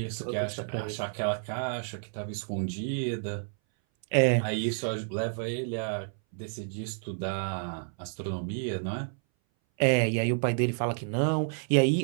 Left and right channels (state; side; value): silent; left; 58 dB below the other